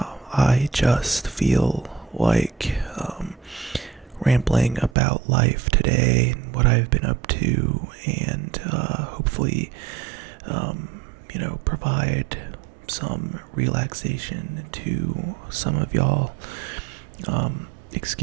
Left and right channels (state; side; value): drops out; left; at 5.0 s